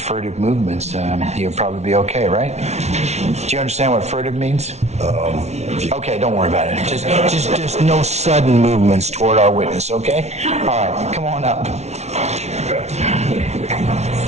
movements, he'll probably be okay, right? Do you understand what furtive means? Okay, don't worry about it. Just no sudden movements toward our witness, okay? All right, come on up.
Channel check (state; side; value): late; left; 0.32 ms